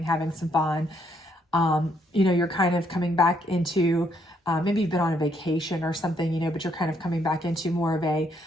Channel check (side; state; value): both; normal; correlation 0.72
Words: having some fun. You're kind of coming back into, maybe you've been on a vacation or something, but you're kind of coming back into more of a